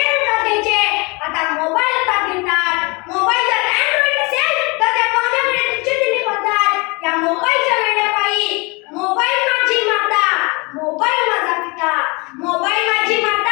का घ्यायचे, आता मोबाईल का घेतात. मोबाईल जर अँड्रॉइड असेल तर त्या पाहुण्याकडे तुच्छतेने पाहतात. या मोबाईलच्या वेड्यापायी मोबाईल माझी माता, मोबाईल माझा पिता, मोबाईल माझी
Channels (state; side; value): quieter; right; 28.0 dB